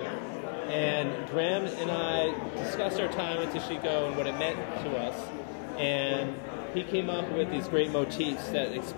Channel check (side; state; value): right; silent; digital silence